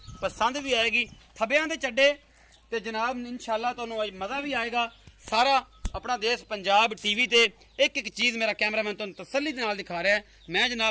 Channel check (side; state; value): both; identical; correlation 1.00